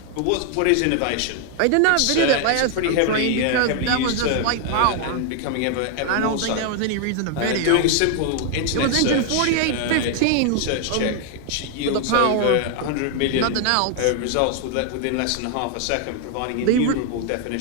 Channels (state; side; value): different; both; correlation 0.00